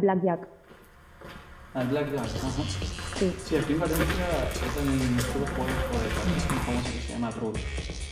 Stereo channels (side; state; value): both; identical; correlation 1.00